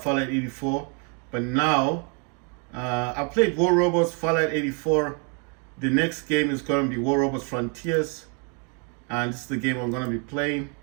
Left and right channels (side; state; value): left; quieter; 37.5 dB